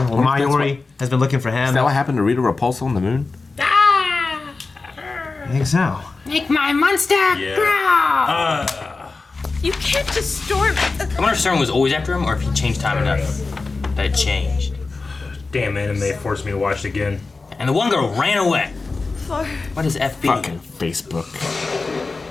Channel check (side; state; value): right; quieter; 3.9 dB